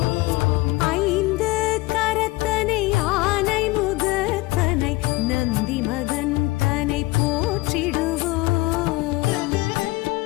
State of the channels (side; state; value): right; quieter; 20.9 dB